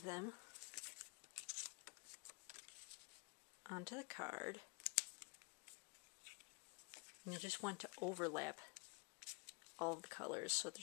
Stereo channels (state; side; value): quieter; right; 32.7 dB